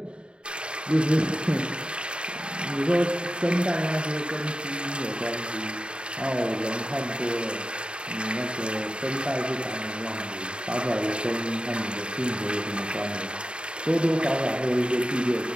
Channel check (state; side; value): late; left; 0.053 ms